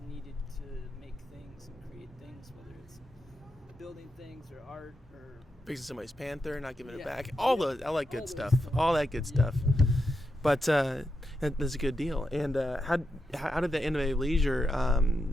needed to make things and create things, whether it's building things or art or fixing somebody's Panther, not giving it back. I like good stuff. All that good stuff. But that's a good deal. And how did the Innovative Leisure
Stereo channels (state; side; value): normal; both; correlation 0.86